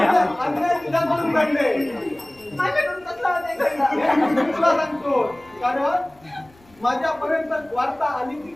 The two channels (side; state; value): left; noise; rumble, 29 dB below the sound